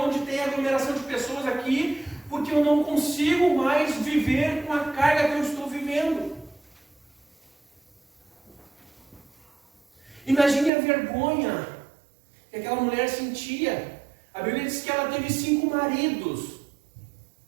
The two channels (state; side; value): drops out; left; at 10.7 s